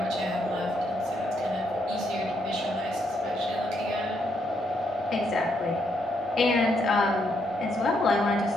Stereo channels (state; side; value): normal; both; correlation 0.76